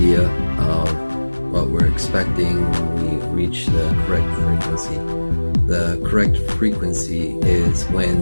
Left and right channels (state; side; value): inverted; both; correlation -1.00